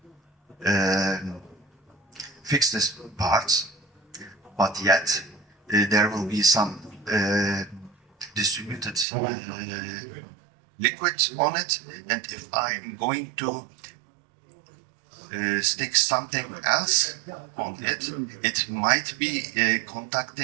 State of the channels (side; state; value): left; drops out; at 9.1 s